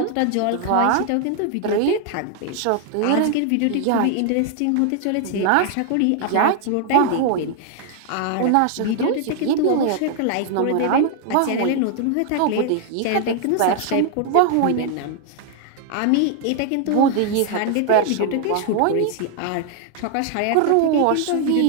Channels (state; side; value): different; both; correlation 0.00